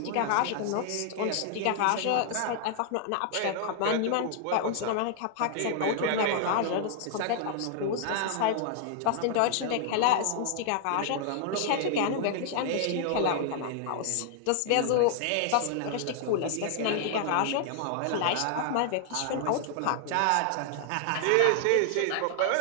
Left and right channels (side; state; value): both; different; correlation 0.00